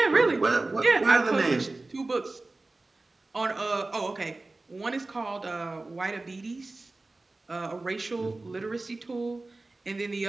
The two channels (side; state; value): left; quieter; 3.2 dB